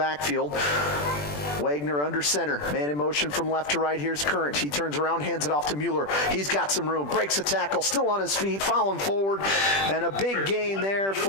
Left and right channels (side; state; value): right; late; 20 ms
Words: Wagner under center. Man in motion from left to right. Here's Current. He turns around, hands it off to Mueller. He's got some room. Breaks a tackle. Still on his feet. Following forward. And a big gain there